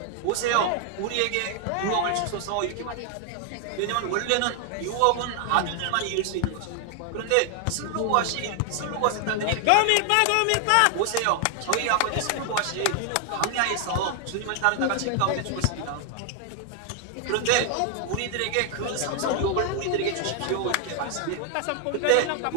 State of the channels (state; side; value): different; both; correlation 0.00